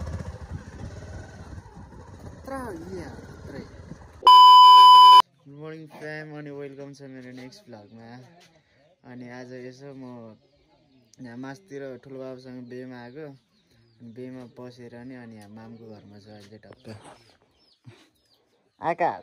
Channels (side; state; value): both; identical; correlation 1.00